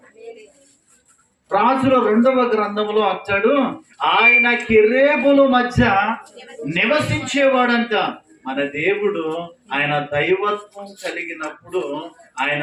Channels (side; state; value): both; identical; correlation 1.00